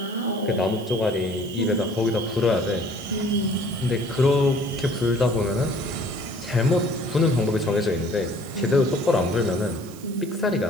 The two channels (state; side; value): noise; right; hiss, 20 dB below the sound